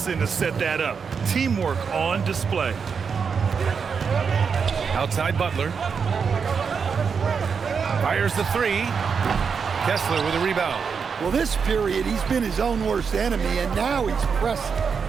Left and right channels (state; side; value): quieter; left; 6.0 dB